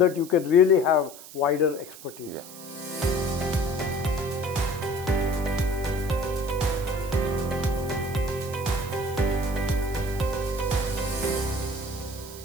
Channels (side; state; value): right; noise; hiss, 16 dB below the sound